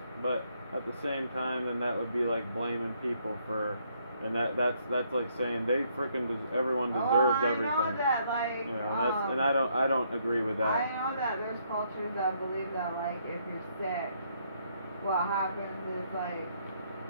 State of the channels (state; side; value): inverted; both; correlation -0.71